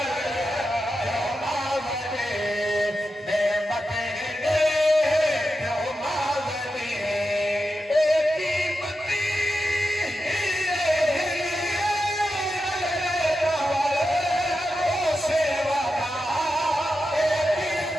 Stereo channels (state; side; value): normal; both; correlation 0.89